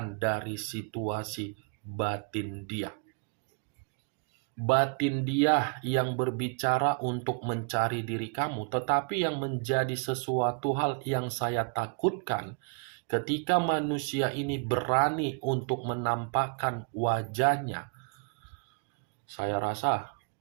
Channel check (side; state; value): left; quieter; 37.0 dB